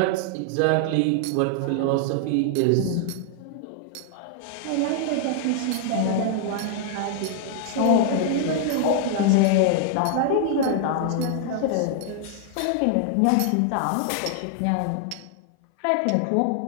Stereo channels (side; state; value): both; different; correlation 0.00